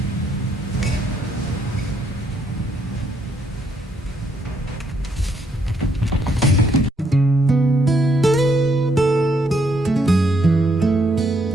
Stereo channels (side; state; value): both; normal; correlation 0.73